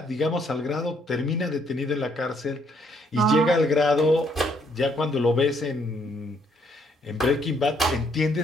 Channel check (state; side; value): normal; both; correlation 0.69